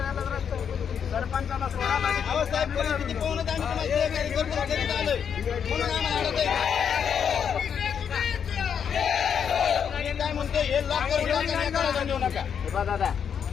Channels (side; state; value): right; quieter; 7.6 dB